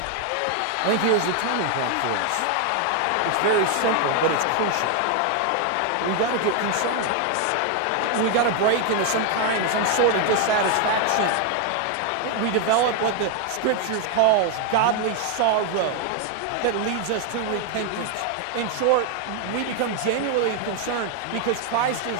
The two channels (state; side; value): different; both; correlation 0.01